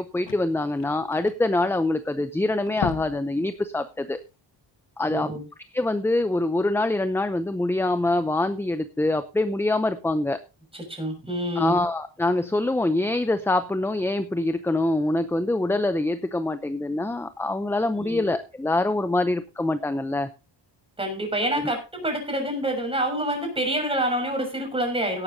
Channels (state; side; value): normal; both; correlation 0.74